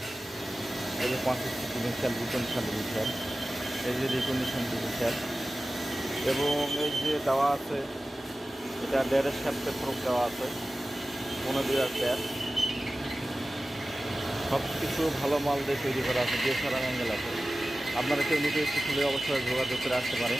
এই যে 5 ডিভিশন, এই যে রিকন্ডিশন ডিভিশন এবং এই যে দেওয়া আছে, এটা 1.5 শ্যাফটের ফ্রক দেওয়া আছে, 15 টায়ার। সব কিছু ভালো মাল দিয়ে তৈরি করা আছে, ডিএসআর অ্যাঙ্গেল আছে। আপনারা কেউ নিতে ইচ্ছে খুলে অবশ্যই যোগাযোগ করে আসতে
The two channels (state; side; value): normal; both; correlation 0.96